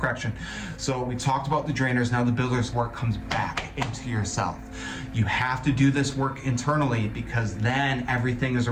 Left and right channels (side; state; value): both; identical; correlation 1.00